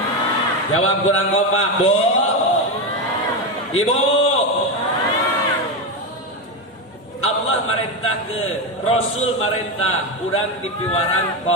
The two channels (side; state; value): both; normal; correlation 0.12